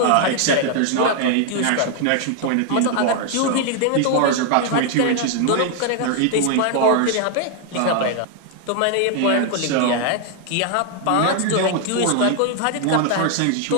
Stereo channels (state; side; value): different; both; correlation 0.00